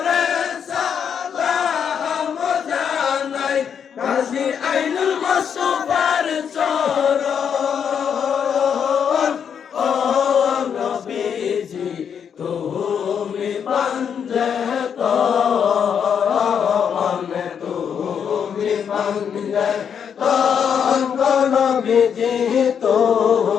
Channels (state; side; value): quieter; right; 7.6 dB